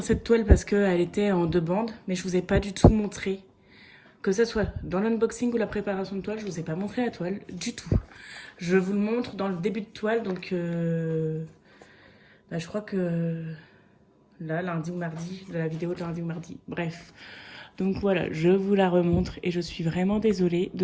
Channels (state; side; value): identical; both; correlation 1.00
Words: cette toile parce qu'elle était en 2 bandes, mais je vous ai pas du tout montré. Que ce soit dans l'unboxing ou la préparation de toile, je vous ai pas montré la toile du tout. Je vous le montre dans le début de toile, donc je crois que là, lundi ou mardi, la vidéo de lundi ou mardi, bref. Donc voilà, je vous la remontre et je suis vraiment désolée de